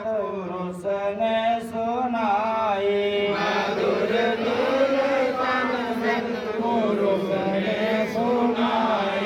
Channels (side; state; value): both; identical; correlation 1.00